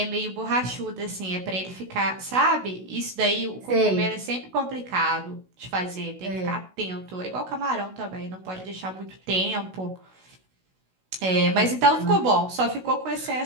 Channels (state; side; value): late; left; 16 ms